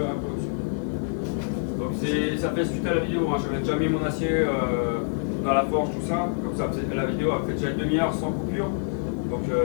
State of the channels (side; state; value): right; silent; 61 dB below the other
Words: Donc ça fait suite à la vidéo, hein. J'avais déjà mis mon acier dans la forge, tout ça, comme ça la vidéo a fait déjà une demi-heure sans coupure. Donc